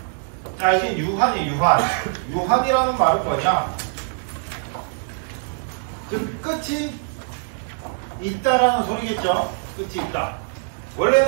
자, 이제 유한이 유한. 유한이라는 말은 뭐냐? 즉 끝이 있다라는 소리겠죠. 끝이 있다.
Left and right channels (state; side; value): silent; left; digital silence